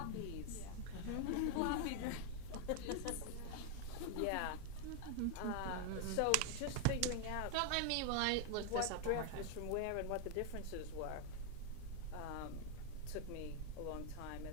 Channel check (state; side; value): different; both; correlation 0.01